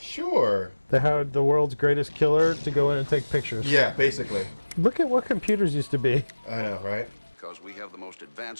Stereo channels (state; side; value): inverted; both; correlation -1.00